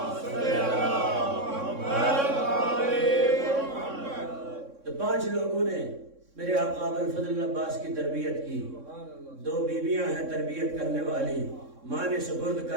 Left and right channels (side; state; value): left; late; 3.6 ms